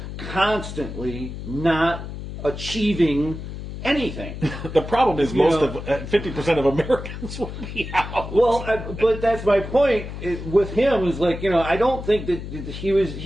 Constantly not achieving anything. The problem is 50% of Americans will be out. Well, but that's my point with him is like, I don't think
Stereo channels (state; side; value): noise; left; hum, 9 dB below the sound